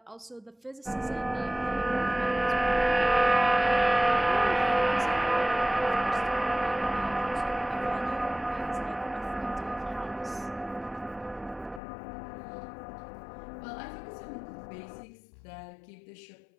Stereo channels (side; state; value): right; drops out; at 11.8 s